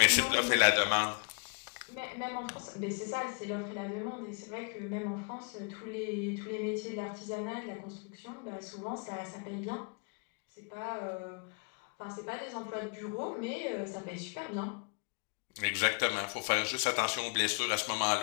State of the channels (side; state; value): right; quieter; 35.2 dB